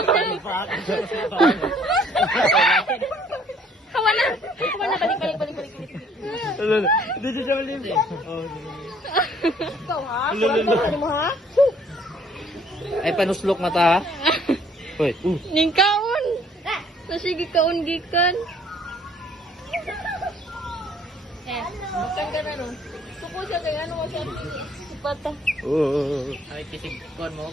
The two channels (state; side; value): normal; both; correlation 0.60